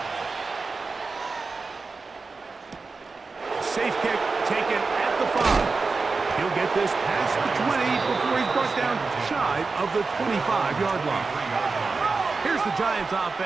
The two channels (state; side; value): quieter; left; 4.2 dB